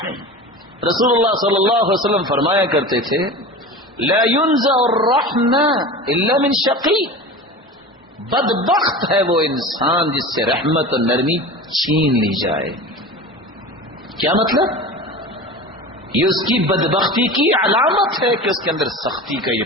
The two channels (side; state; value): both; normal; correlation 0.32